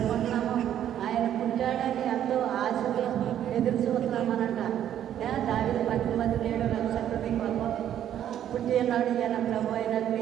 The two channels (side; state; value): left; quieter; 10.6 dB